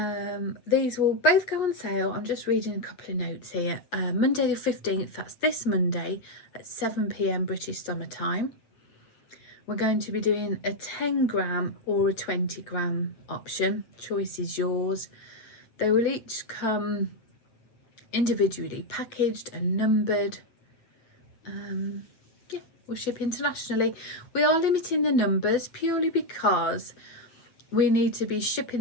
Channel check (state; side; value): late; right; 8.7 ms